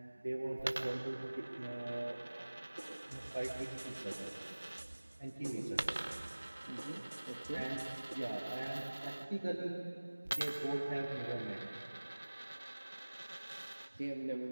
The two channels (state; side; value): inverted; both; correlation -1.00